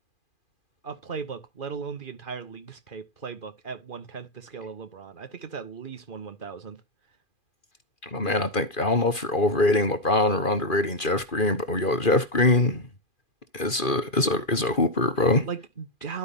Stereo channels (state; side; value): late; right; 2.4 ms